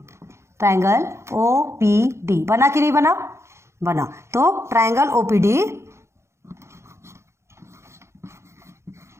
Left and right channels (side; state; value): left; late; 0.13 ms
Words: ट्राइंगल ओपीडी बना कि नहीं बना, बना। तो triangle OPD